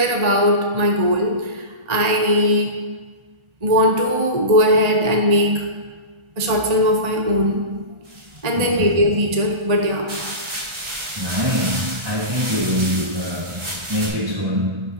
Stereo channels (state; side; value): late; left; 1.3 ms